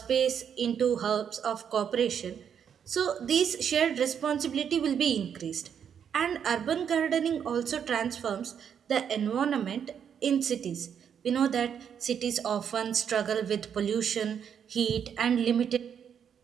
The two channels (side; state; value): left; quieter; 8.0 dB